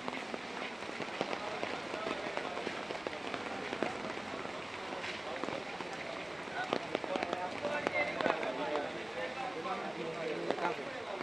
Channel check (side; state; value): left; noise; rumble, 30 dB below the sound